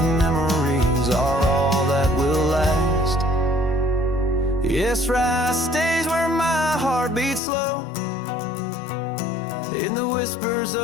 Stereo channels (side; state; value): right; drops out; at 7.4 s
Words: memories are all that will last. Yes, rye stays where my heart beats slow, in the whispers